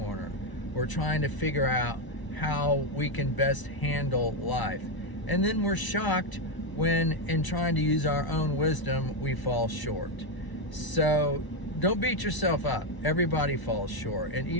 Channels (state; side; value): late; right; 1.0 ms